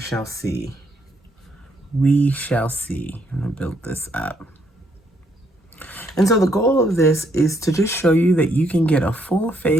see. We shall see. I'm gonna build this up. And so the goal of this is to just show you that you can get a full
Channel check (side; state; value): both; normal; correlation 0.73